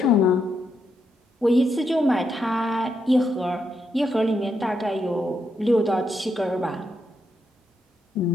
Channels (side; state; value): both; normal; correlation 0.80